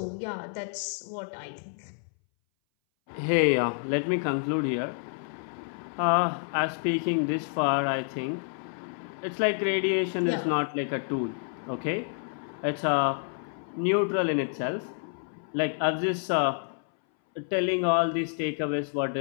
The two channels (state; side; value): silent; right; 59 dB below the other